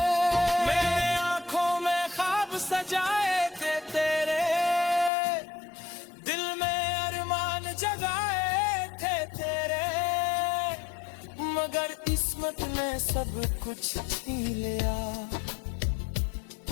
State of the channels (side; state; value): right; drops out; at 5.1 s